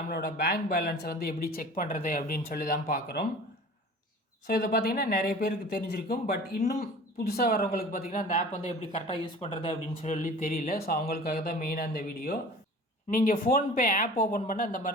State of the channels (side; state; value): both; normal; correlation 0.42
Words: பேங்க் பேலன்ஸை வந்து எப்படி செக் பண்ணுறது அப்படின்னு சொல்லி தான் பார்க்குறோம். ஸோ இதை பார்த்தீங்கன்னா நிறைய பேருக்கு தெரிஞ்சிருக்கும். பட் இன்னும் புதுசாக வரவங்களுக்கு பார்த்தீங்கன்னா, அந்த ஆப் வந்து எப்படி கரெக்டாக யூஸ் பண்ணுறது அப்படின்னு சொல்லி தெரியல. ஸோ அவங்களுக்காக தான் மெயினாக இந்த வீடியோ. நீங்கள் ஃபோன்பே ஆப் ஓப்பன் பண்ண இந்த